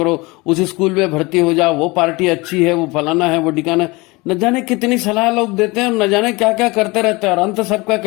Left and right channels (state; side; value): quieter; right; 24.2 dB